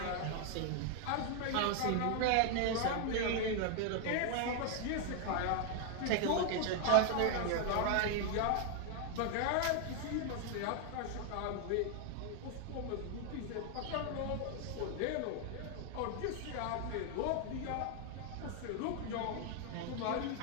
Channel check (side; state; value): both; different; correlation 0.00